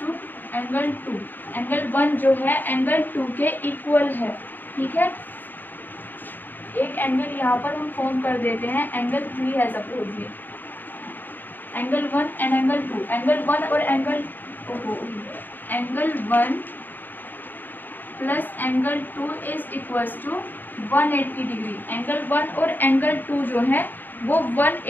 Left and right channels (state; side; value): late; right; 0.091 ms